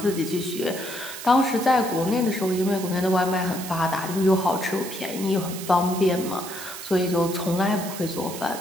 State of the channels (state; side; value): noise; right; hiss, 10 dB below the sound